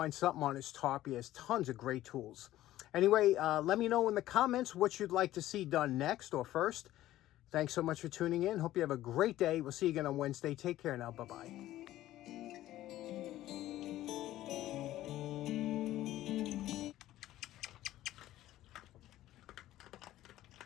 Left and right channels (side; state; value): right; quieter; 14.5 dB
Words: something on his top. He has tons of great tools. Anyway, let me know in the comments what you'd like to see done next or first. Thanks so much for tuning in. Hope you have a great day. We'll see you again on Wednesday. Take care now. Bye-bye.